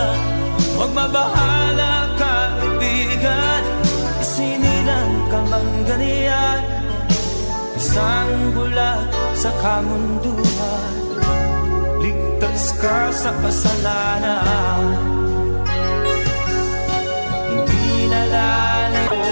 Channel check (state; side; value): inverted; both; correlation -1.00